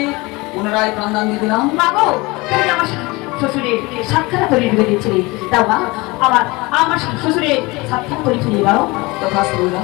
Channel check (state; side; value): quieter; right; 23.7 dB